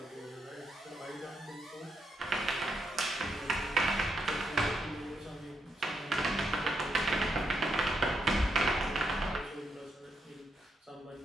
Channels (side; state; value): both; normal; correlation 0.80